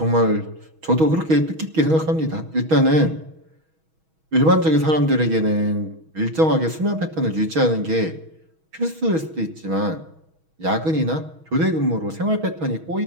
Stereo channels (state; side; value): late; left; 6.3 ms